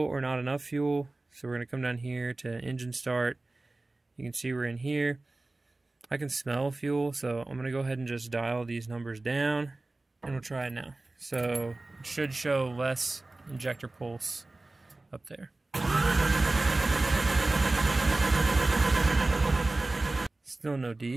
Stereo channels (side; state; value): left; quieter; 3.0 dB